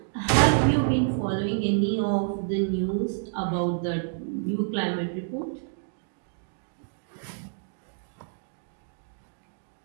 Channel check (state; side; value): silent; left; digital silence